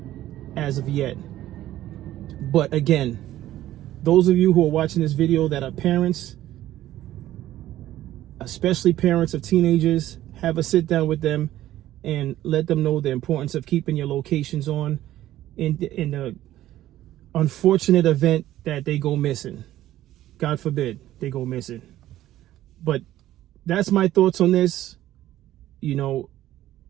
as of yet. But again, those of you who are watching this video that are parents, especially parents of teenagers, have a sit down with them and let them know the importance of keeping your locations on in the unfortunate event that they go missing. God forbid they go missing. But that's my thoughts on this. You know,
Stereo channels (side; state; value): left; quieter; 13.9 dB